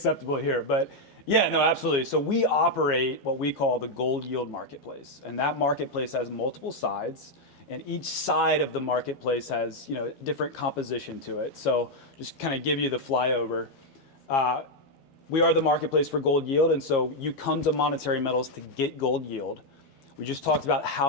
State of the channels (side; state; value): right; late; 12 ms